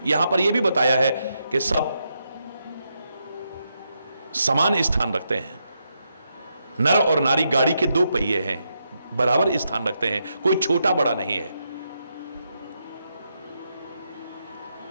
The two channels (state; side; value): inverted; both; correlation -0.82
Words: यहां पर यह भी बताया है कि सब समान स्थान रखते हैं। नर और नारी गाड़ी के दो पहिए हैं, बराबर स्थान रखते हैं, कोई छोटा बड़ा नहीं है।